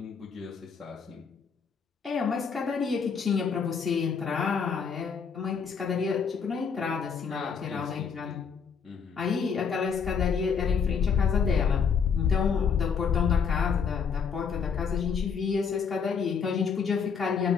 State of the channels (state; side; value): quieter; right; 6.3 dB